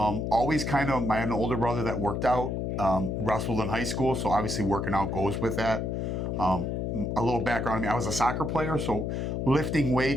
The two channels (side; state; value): left; noise; hum, 1 dB below the sound